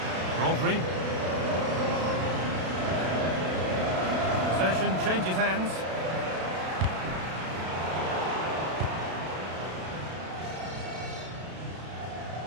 Rodri. Possession changes hands.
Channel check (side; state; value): left; late; 32 ms